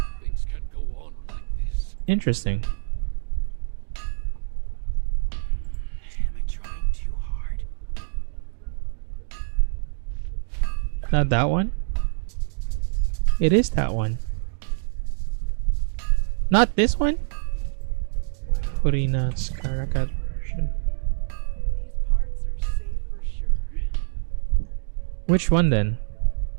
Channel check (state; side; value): silent; left; digital silence